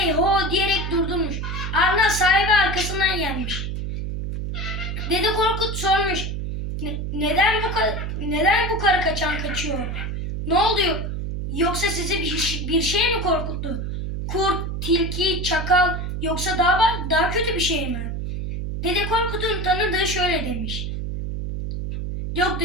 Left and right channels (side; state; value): right; noise; hum, 4 dB below the sound